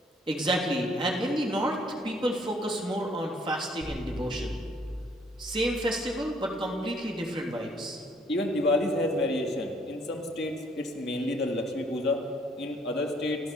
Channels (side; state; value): both; normal; correlation 0.63